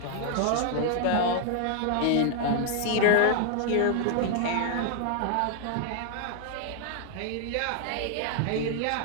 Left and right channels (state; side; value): different; both; correlation 0.00